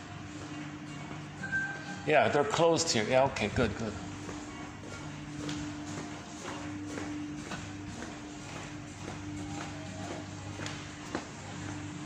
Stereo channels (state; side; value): identical; both; correlation 1.00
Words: Yeah, they're closed here. Yeah, okay, good.